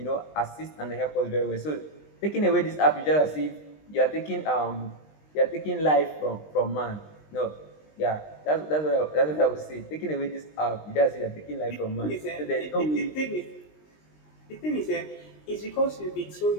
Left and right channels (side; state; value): right; late; 20 ms